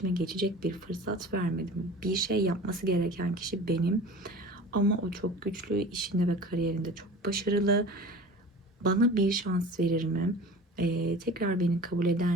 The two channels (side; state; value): both; normal; correlation 0.39